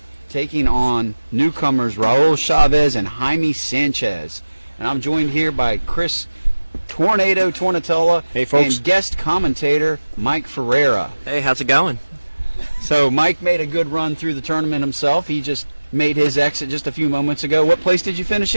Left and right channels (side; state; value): both; inverted; correlation -1.00